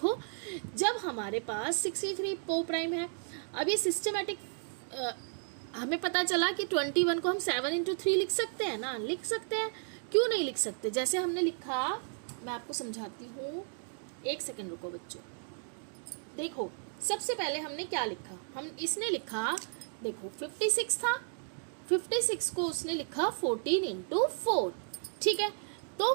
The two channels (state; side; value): silent; left; 55 dB below the other